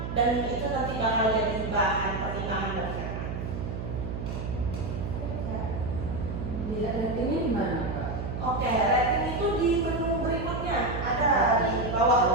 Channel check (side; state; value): right; noise; hum, 5 dB below the sound